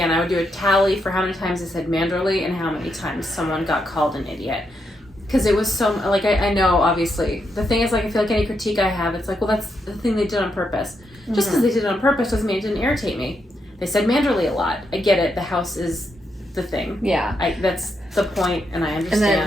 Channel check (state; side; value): normal; both; correlation 0.81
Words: I would do a tally for how many times I said manderly and how many times someone got called an idiot. Because it was so, I know, obviously. The thing is, I feel like any critique I have, it's like, well, that's the thing they did on purpose. Mm-hmm. Just because they did it on purpose doesn't mean it didn't irritate me. They said manderly a lot. I get it. The house is the thing. Yeah. That's the point, and I understand.